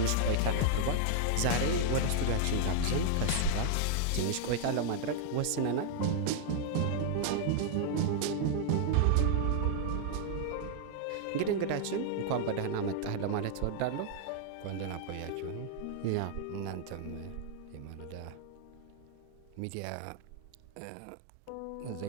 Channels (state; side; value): different; both; correlation -0.01